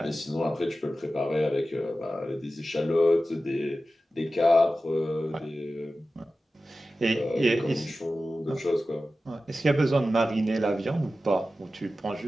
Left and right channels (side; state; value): both; normal; correlation 0.94